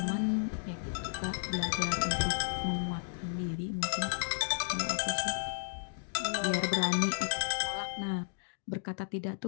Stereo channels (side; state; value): right; silent; digital silence